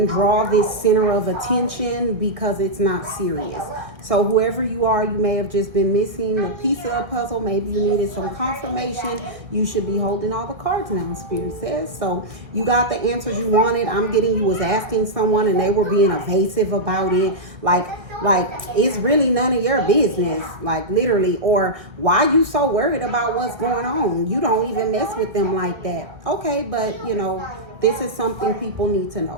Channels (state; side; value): late; left; 1.6 ms